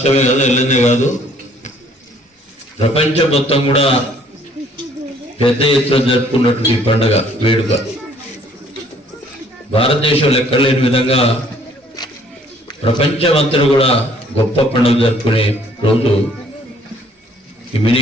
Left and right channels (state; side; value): normal; both; correlation 0.60